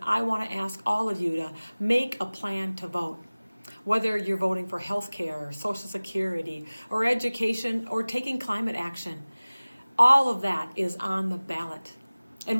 I want to ask all of you to make a plan to vote. Whether you're voting for health care, Social Security, or education, or taking climate action, all of that is on the ballot. And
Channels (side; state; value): both; inverted; correlation -0.99